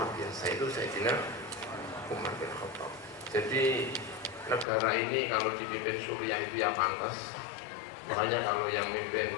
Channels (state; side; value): drops out; right; at 4.7 s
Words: biasa, itu Sayyidina Umar bin Khattab. Jadi negara ini kalau dipimpin Suriah itu ya pantas. Makanya kalau yang mimpin